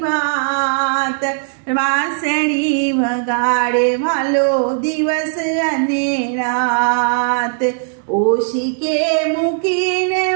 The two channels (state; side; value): silent; left; digital silence